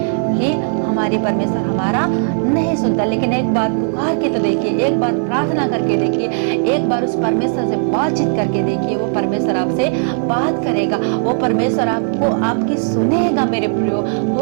कि हमारी परमेश्वर हमारा नहीं सुनता, लेकिन एक बार पुकार के तो देखिए, एक बार प्रार्थना करके देखिए, एक बार उस परमेश्वर से बातचीत करके देखिए, वो परमेश्वर आपसे बात करेगा, वो परमेश्वर आपको आपकी सुनेगा। मेरे प्रियो,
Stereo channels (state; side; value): silent; left; 68 dB below the other